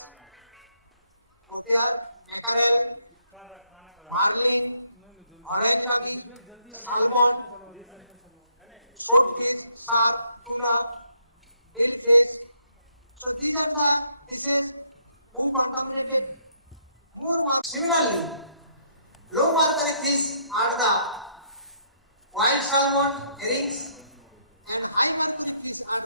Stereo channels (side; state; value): both; inverted; correlation -0.70